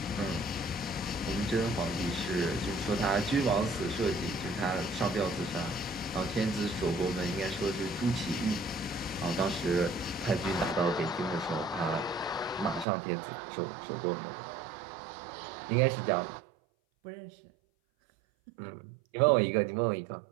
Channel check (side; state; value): left; drops out; at 12.9 s